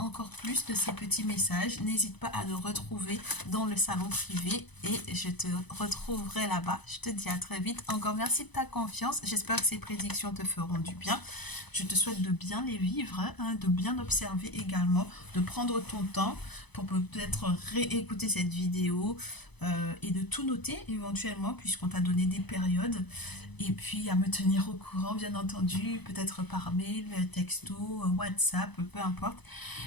plus de ces petits messages, n'hésite pas à nous retrouver dans le salon privé et je te retrouverai là-bas. Je te dis à très vite. Encore merci de ta confiance. J'espère que ces prédictions te feront du bien. Je te souhaite de bien les vivre, hein, de bien observer également, de prendre ton temps pour peut-être réécouter cette vidéo et de tout noter éventuellement puisqu'on t'a donné des périodes. Et puis à me tenir au courant, bien entendu, peut-être par mail, texto, WhatsApp, peu importe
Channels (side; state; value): right; late; 0.99 ms